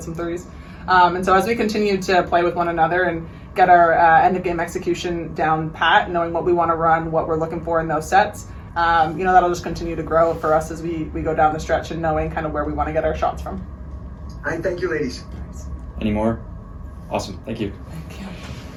some threes. And so as we continue to play with one another and get our end of game execution down pat, knowing what we want to run, what we're looking for in those sets, that'll just continue to grow for us as we go down the stretch and knowing kind of where we want to get our shots from. All right, thank you, ladies. Any more? Awesome. Thank you.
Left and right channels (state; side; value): identical; both; correlation 1.00